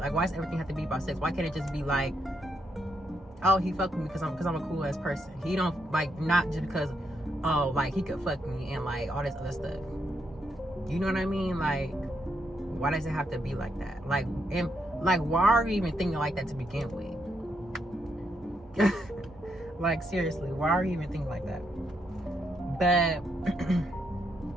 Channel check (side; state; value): both; normal; correlation 0.79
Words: why does everything have to be about sex? Why can't it just be like, oh, he fucked me because I'm a cool ass person. He don't, like, not just because, oh, like, he could fuck me and like all this other stuff. You know what I mean? Like, why does it have to be like that? Like, and like, why are you even thinking like that to begin with? Like, seriously, why are you even thinking like that? But